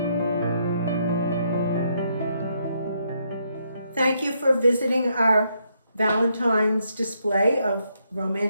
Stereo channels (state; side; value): inverted; both; correlation -0.76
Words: Thank you for visiting our Valentine's display of